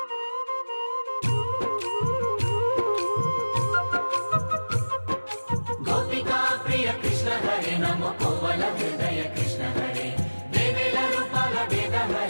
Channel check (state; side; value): inverted; both; correlation -1.00